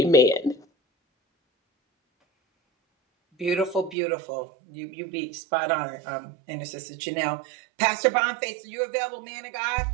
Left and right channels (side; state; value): left; drops out; at 4.0 s